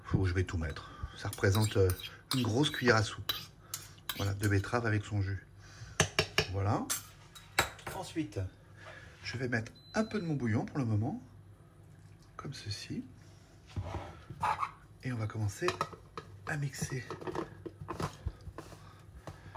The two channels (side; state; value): both; identical; correlation 1.00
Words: je vais tout mettre. Ça représente une grosse cuillère à soupe. Voilà, de betterave avec son jus. Voilà. Ensuite, je vais mettre un peu de mon bouillon pour le moment. Comme ceci. Et on va commencer à mixer.